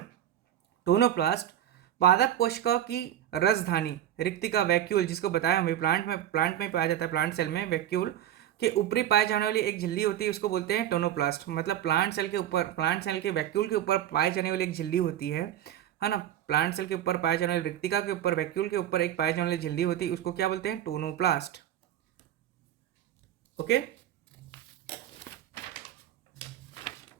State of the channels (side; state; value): left; quieter; 11.6 dB